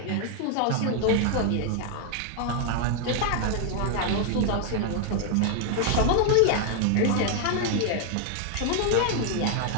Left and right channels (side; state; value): both; different; correlation 0.00